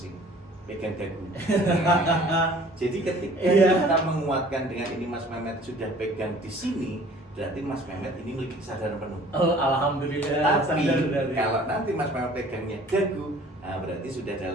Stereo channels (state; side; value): normal; both; correlation 0.51